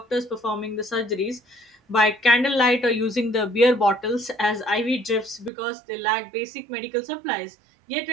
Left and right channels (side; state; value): left; drops out; at 5.5 s